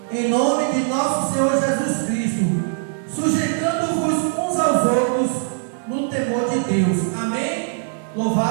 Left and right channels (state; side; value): silent; left; digital silence